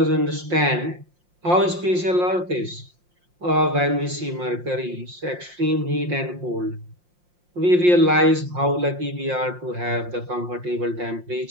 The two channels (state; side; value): late; left; 5.7 ms